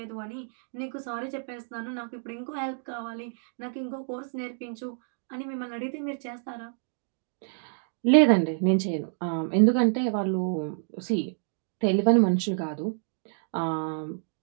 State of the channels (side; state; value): left; silent; digital silence